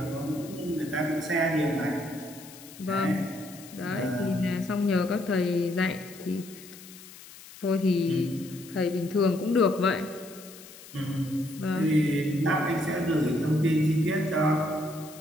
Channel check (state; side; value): noise; left; hiss, 18 dB below the sound